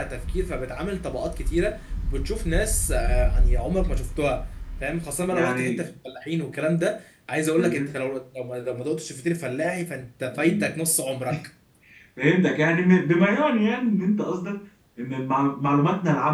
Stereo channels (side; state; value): both; identical; correlation 1.00